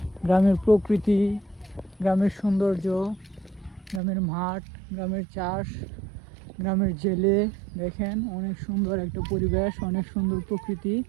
গ্রামের প্রকৃতি, গ্রামের সৌন্দর্য, গ্রামের মাঠ, গ্রামের চাষ, গ্রামের জেলে দেখেন অনেক সুন্দর একটা পরিবেশ, অনেক সুন্দর প্রকৃতি।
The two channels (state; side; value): drops out; left; at 4.0 s